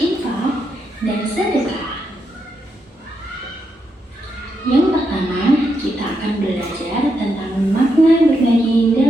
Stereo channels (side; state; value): both; normal; correlation 0.82